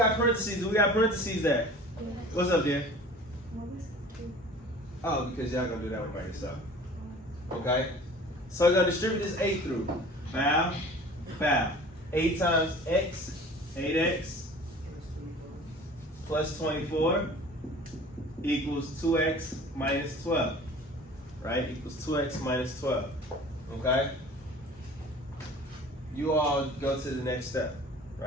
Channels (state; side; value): normal; both; correlation 0.44